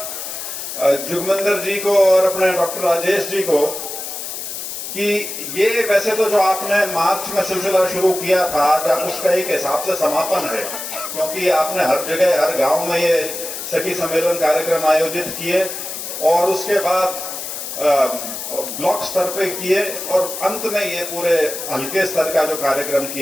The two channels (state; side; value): noise; left; hiss, 7 dB below the sound